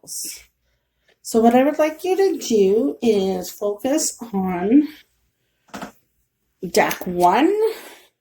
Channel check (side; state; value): both; identical; correlation 1.00